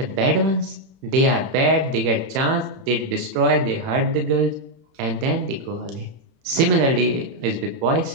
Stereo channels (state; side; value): late; left; 31 ms